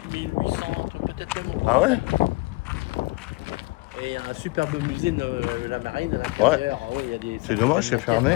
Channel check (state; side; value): quieter; right; 23.8 dB